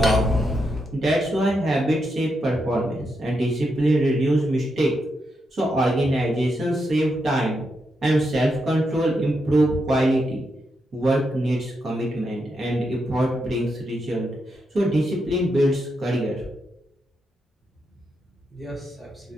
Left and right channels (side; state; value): both; normal; correlation 0.83